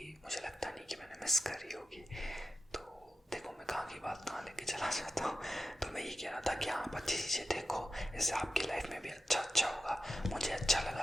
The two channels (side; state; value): both; normal; correlation 0.89